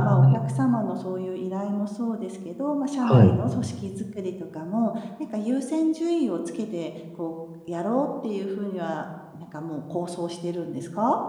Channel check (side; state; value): both; identical; correlation 1.00